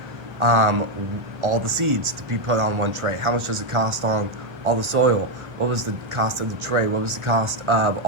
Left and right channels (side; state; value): left; late; 1.4 ms